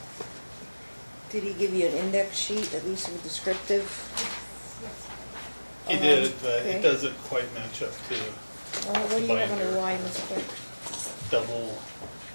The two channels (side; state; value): both; inverted; correlation -1.00